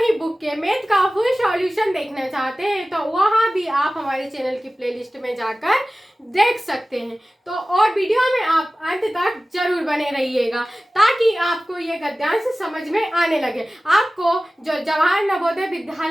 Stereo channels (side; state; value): both; normal; correlation 0.96